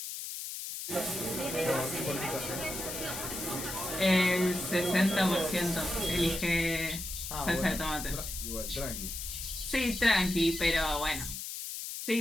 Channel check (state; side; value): noise; left; hiss, 6 dB below the sound